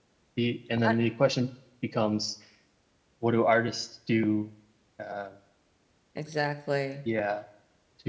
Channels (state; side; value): identical; both; correlation 1.00